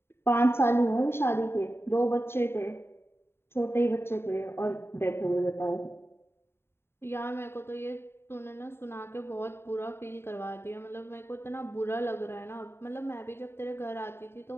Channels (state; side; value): late; right; 0.11 ms